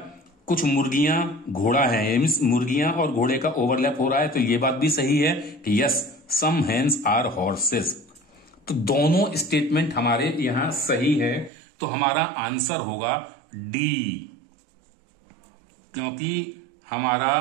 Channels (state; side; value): drops out; left; at 11.5 s